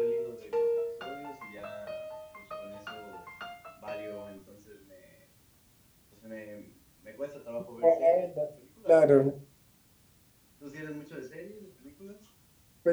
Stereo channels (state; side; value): identical; both; correlation 1.00